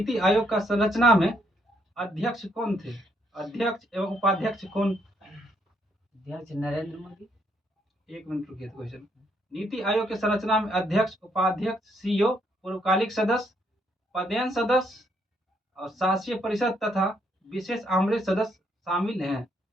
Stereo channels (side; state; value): both; normal; correlation 0.72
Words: आयोग का संरचना में अध्यक्ष कौन थे, अध्यक्ष एवं उपाध्यक्ष कौन। अध्यक्ष नरेंद्र मोदी। एक मिनट रुकिए क्वेश्चन। नीति आयोग के संरचना में अध्यक्ष, उपाध्यक्ष, सीईओ, पूर्वकालिक सदस्य, पदेन सदस्य और शासीय परिषद तथा विशेष आमंत्रित सदस्य शामिल हैं।